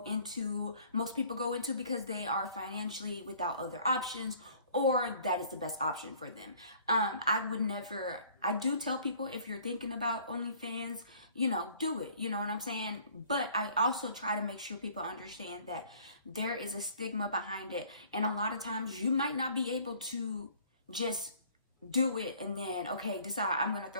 into, most people go into because they are financially without other options, or that is the best option for them. I do tell people, if you're thinking about OnlyFans, do it, you know what I'm saying? But I also try to make sure people understand that there is a stigma behind it. And a lot of times you might not be able to just do it and then, okay, decide I'm going to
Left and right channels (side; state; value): both; inverted; correlation -0.55